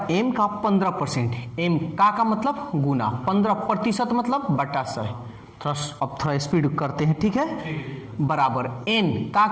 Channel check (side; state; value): both; identical; correlation 1.00